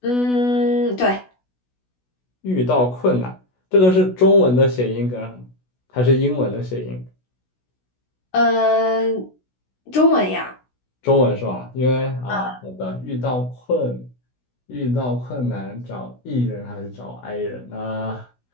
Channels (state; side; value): late; right; 16 ms